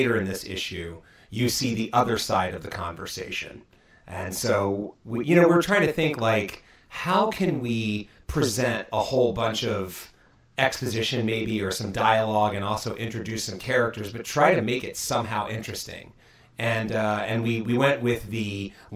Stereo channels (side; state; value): both; identical; correlation 1.00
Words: in this issue, you see the other side of the conversation. And so, we're trying to think, like, how can we present a whole bunch of exposition maybe, or some dialogue, and also introduce some characters, but try to make it somehow interesting. And we went with the